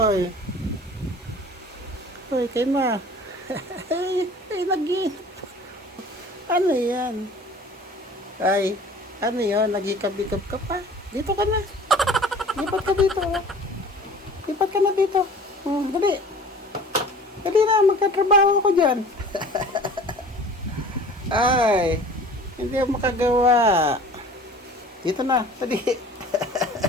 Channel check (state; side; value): normal; both; correlation 0.45